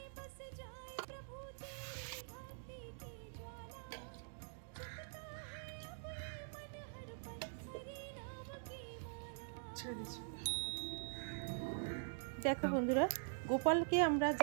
দেখো বন্ধুরা, গোপালকে আমরা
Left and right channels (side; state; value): left; silent; digital silence